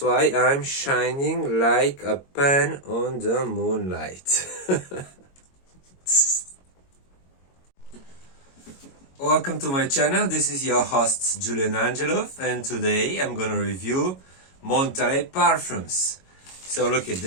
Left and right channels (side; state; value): right; late; 22 ms